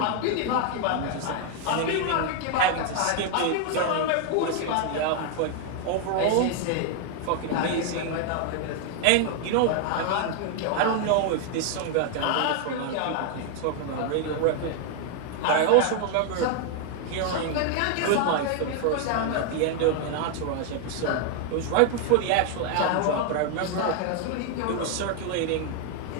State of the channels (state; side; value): different; both; correlation 0.00